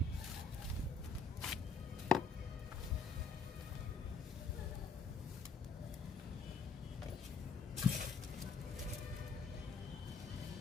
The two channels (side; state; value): right; quieter; 4.5 dB